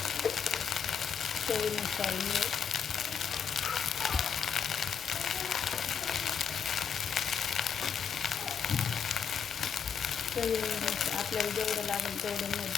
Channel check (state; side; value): quieter; right; 7.2 dB